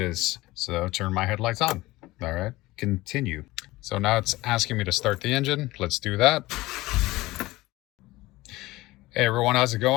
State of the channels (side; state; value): right; quieter; 19.2 dB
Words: So turn my headlights on. All right, continue. So now it's asking me to start the engine. Let's do that. Hey everyone, how's it